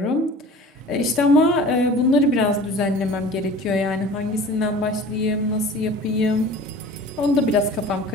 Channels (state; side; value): normal; both; correlation 0.42